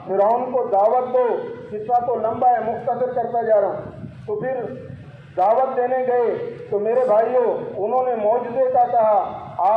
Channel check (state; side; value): identical; both; correlation 1.00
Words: فرعون کو دعوت دو، قصہ تو لمبا ہے مختصر کرتا جا رہا ہوں۔ تو پھر دعوت دینے گئے تو میرے بھائیوں انہوں نے معجزے کا کہا،